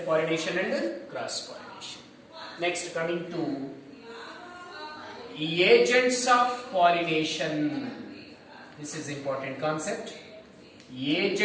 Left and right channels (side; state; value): both; identical; correlation 1.00